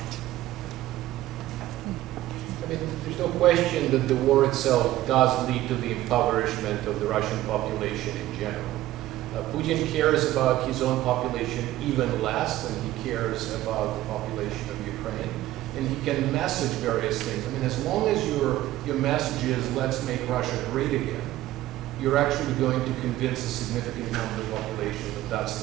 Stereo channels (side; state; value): left; quieter; 15.2 dB